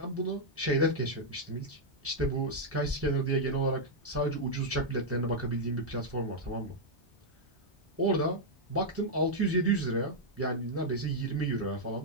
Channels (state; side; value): normal; both; correlation -0.04